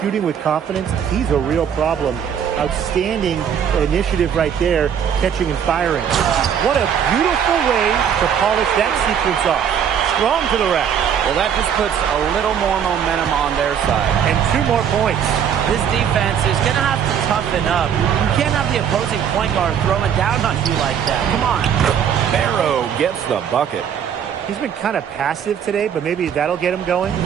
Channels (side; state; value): left; quieter; 8.4 dB